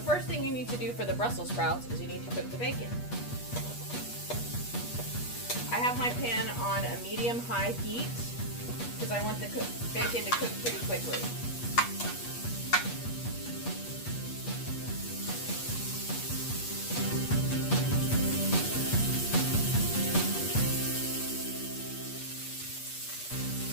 thing you need to do for the Brussels sprouts is you need to cook the bacon. I have my pan on a medium-high heat because I want the bacon to cook pretty quickly.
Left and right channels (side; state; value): right; late; 8.3 ms